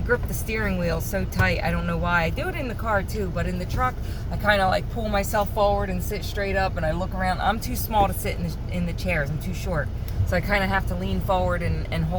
the steering wheel so tight, I don't know why. I do it in the car too, but in the truck, I kind of like pull myself forward and sit straight up, and I look around. I'm too small to sit in the chairs. I'm too short. So I kind of have to lean forward and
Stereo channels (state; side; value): identical; both; correlation 1.00